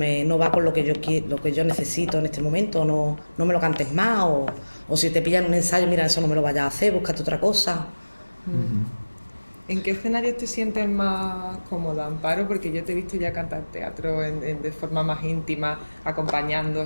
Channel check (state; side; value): inverted; both; correlation -1.00